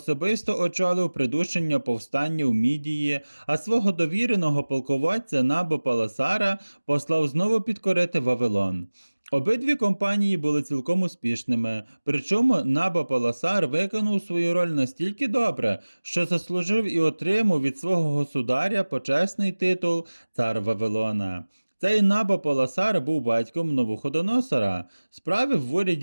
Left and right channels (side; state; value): both; inverted; correlation -1.00